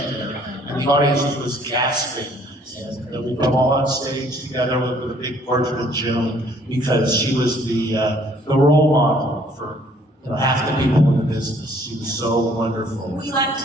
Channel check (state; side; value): normal; both; correlation 0.61